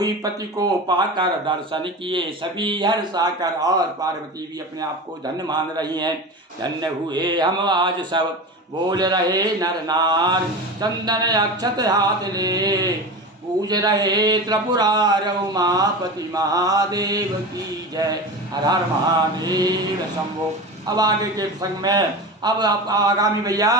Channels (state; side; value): normal; both; correlation 0.28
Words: पति को पाकर, दर्शन किए सभी हर्षा कर। और पार्वती भी अपने आप को धन्य मान रही हैं। धन्य हुए हम आज सब, बोल रहे नर नार, चंदन अक्षत हाथ ले। पूज रहे त्रिपुरार उमापति महादेव की जय। हर हर महादेव शंभो। अब आगे के प्रसंग में, अब आगामी भैया